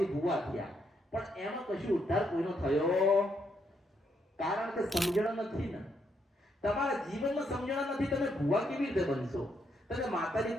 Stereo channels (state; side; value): normal; both; correlation 0.76